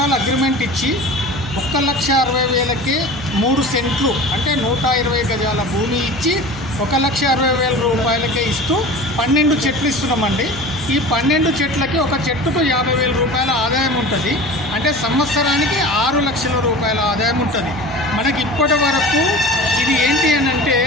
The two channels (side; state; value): right; noise; hum, 15 dB below the sound